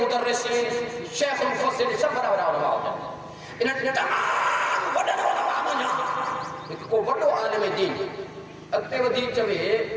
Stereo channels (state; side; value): identical; both; correlation 1.00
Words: شیخ المفسرین سب بڑا بڑا علماء ہوتا ہے انہیں تمام بڑا علماء بنا لیکن کو بڑا عالم دین اکتے و دین چوئے